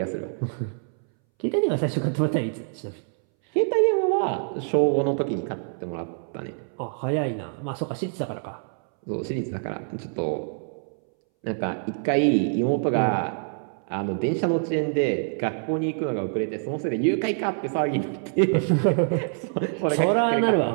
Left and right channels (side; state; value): left; silent; 61 dB below the other